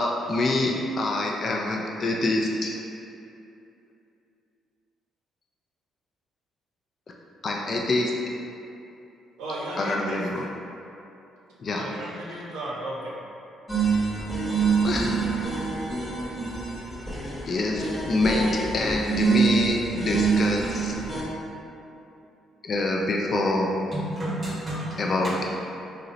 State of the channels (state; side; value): normal; both; correlation 0.75